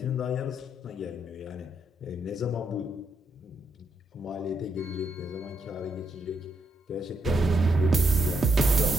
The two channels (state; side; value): normal; both; correlation 0.78